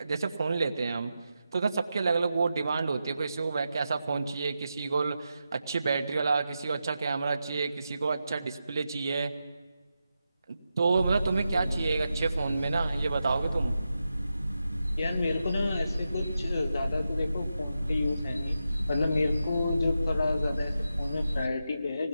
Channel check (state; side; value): inverted; both; correlation -0.89